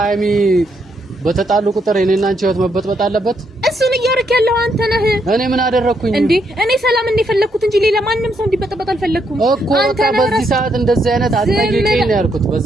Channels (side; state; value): both; normal; correlation 0.76